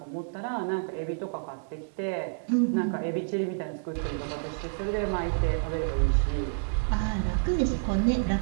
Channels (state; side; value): silent; left; 59 dB below the other